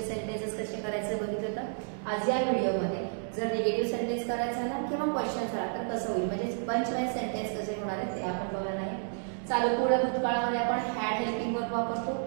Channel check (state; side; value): silent; left; digital silence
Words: सेंटेन्सेस कसे करायचे बघितलं होतं. आज या व्हिडिओमध्ये जर निगेटिव्ह सेंटेन्स करायचा झाला किंवा क्वेश्चन झाला तर कसं होईल, म्हणजे पंच वाइज सेंटेन्स कसे होणार आहेत ते आपण बघणार आहे. चालू पूर्ण भूतकाळामध्ये आपण हॅड हेल्पिंग वर्ब वापरतो,